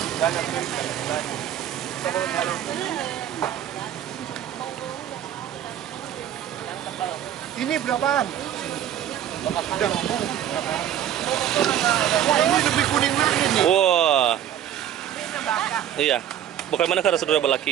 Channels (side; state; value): left; quieter; 10.6 dB